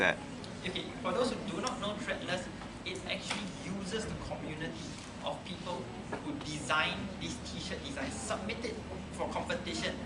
Okay, for those who do not know Threadless, it actually uses the community of people who design these t-shirt designs, submit it for competition.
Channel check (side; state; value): both; identical; correlation 1.00